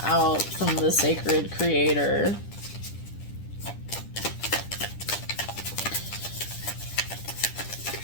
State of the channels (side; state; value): right; late; 10 ms